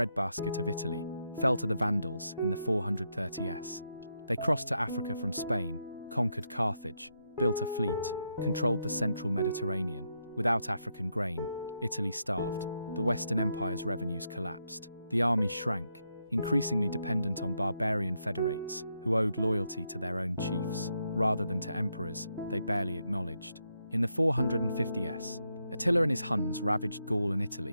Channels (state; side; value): inverted; both; correlation -0.81